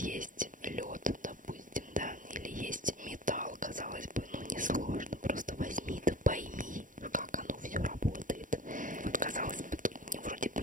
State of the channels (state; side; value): late; left; 0.38 ms